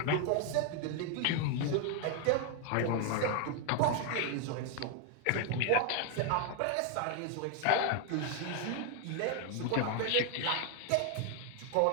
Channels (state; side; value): different; both; correlation 0.01